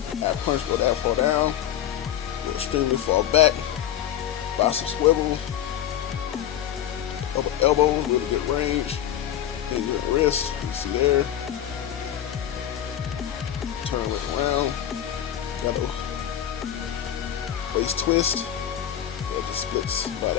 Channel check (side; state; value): right; quieter; 10.8 dB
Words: Add punch for that far down. Go extremely far back. Buy some swivel. Upper elbows, really good range. Then your wrist, you see there. Turn it around. Got a waist twist. That just splits by